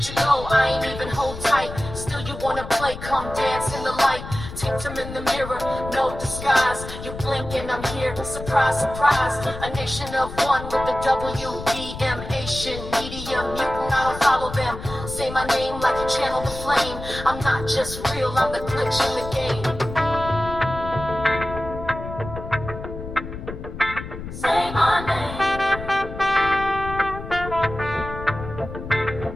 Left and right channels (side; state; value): left; noise; rumble, 10 dB below the sound